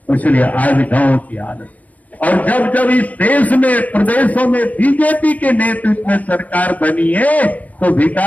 इसलिए आज गांव की हालत। और जब जब इस देश में प्रदेशों में बीजेपी के नेतृत्व में सरकार बनी है तो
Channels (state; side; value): late; right; 0.075 ms